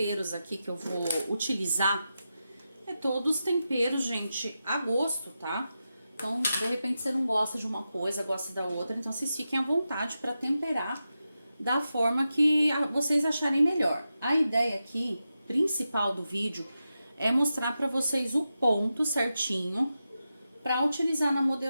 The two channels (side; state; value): both; inverted; correlation -0.90